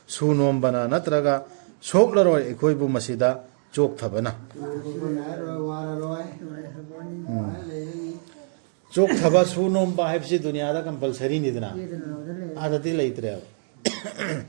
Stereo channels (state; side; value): silent; left; digital silence